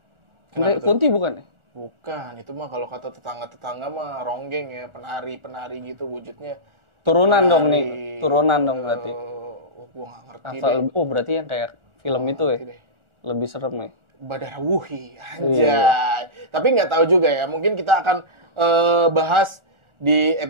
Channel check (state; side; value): late; left; 1.4 ms